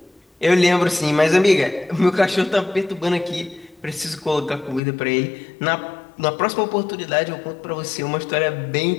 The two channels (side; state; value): right; drops out; at 4.8 s